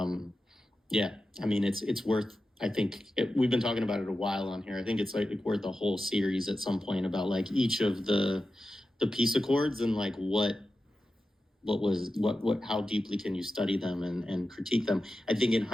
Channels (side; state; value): both; normal; correlation 0.92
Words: it's worth, I think we've been talking about it a while on here. I think it's worth a whole series at some point about each of the peace accords and what how deeply can you study them and critique them? I think in